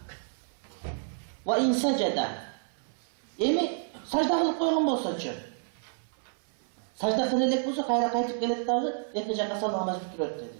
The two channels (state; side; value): silent; left; 58 dB below the other